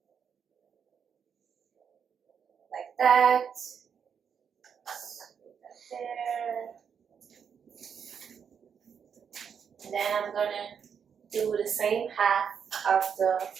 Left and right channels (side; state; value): left; quieter; 7.2 dB